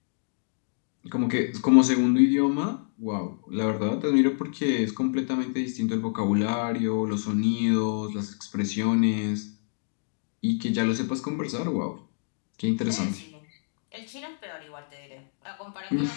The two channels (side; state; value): right; silent; 60 dB below the other